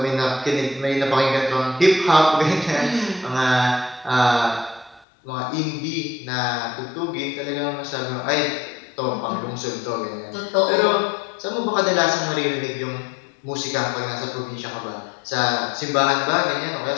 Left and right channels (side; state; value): right; drops out; at 5.1 s